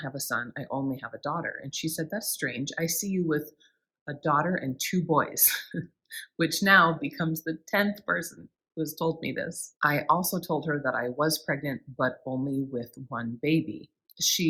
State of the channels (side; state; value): both; identical; correlation 1.00